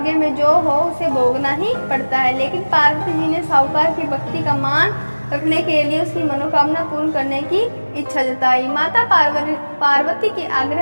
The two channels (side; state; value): both; inverted; correlation -1.00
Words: में जो हो उसे भोगना ही पड़ता है। लेकिन पार्वती जी ने साहूकार की भक्ति का मान रखने के लिए उसकी मनोकामना पूर्ण करने की इच्छा जताई। माता पार्वती के